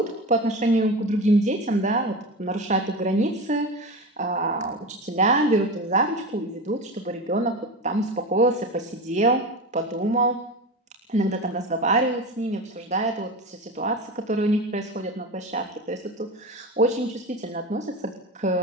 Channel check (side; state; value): both; normal; correlation 0.25